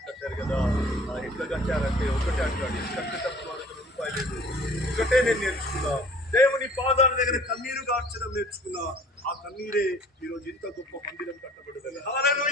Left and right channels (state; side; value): normal; both; correlation 0.50